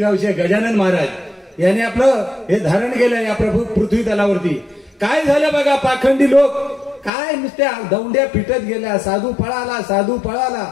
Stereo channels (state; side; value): drops out; right; at 7.1 s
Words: गजानन महाराज यांनी आपलं हे धारण केलं या पृथ्वी तलावरती. काय झालं बघा, पाखंडी लोक काय नुसत्या दौंड्या पिटत गेल्या, साधू पळाला, साधू पळाला.